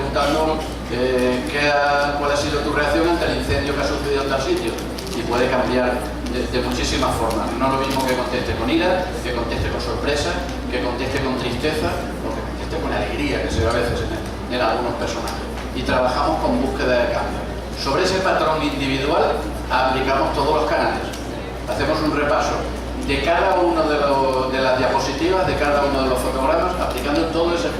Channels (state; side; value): identical; both; correlation 1.00